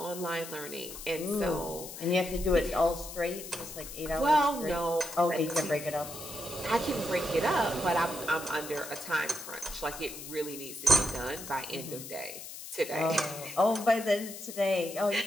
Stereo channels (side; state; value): left; noise; hiss, 11 dB below the sound